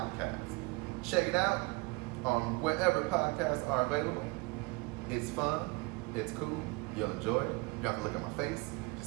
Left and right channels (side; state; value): left; quieter; 26.4 dB